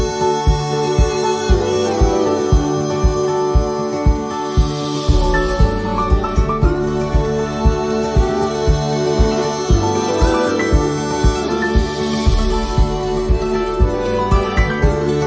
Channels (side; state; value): both; identical; correlation 1.00